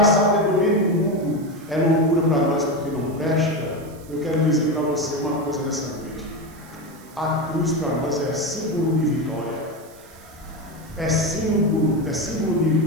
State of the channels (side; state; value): right; noise; hiss, 24 dB below the sound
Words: sabedoria do mundo é loucura para nós porque não presta. Eu quero dizer para você uma coisa nessa noite: a cruz para nós é símbolo de vitória, é símbolo de